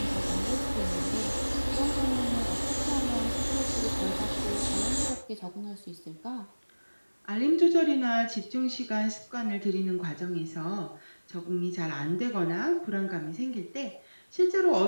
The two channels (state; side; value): inverted; both; correlation -1.00